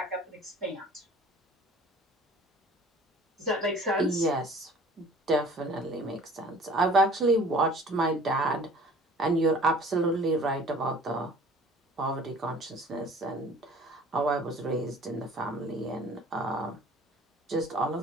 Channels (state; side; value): normal; both; correlation 0.49